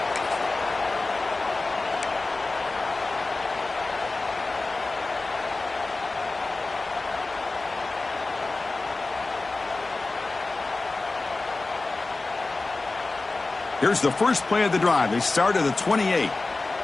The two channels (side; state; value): right; quieter; 3.4 dB